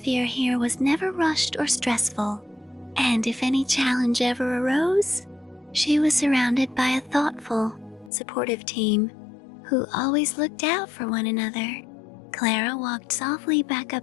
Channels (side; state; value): right; drops out; at 8.1 s